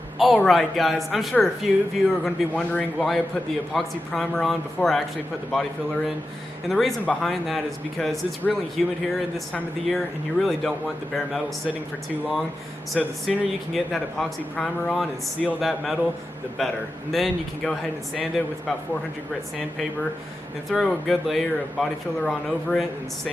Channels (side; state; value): both; normal; correlation 0.91